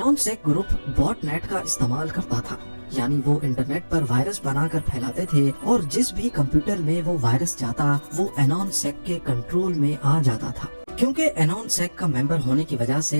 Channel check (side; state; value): both; inverted; correlation -1.00